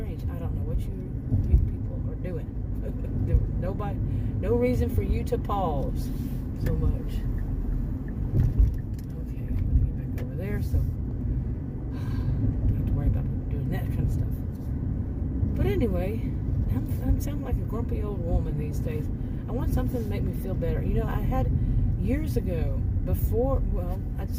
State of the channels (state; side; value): identical; both; correlation 1.00